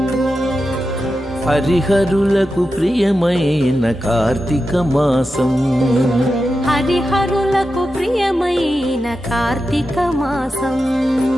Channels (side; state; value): both; normal; correlation 0.91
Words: హరిహరులకు ప్రియమైన కార్తీక మాసం, హరిహరులకు ప్రియమైన కార్తీక మాసం,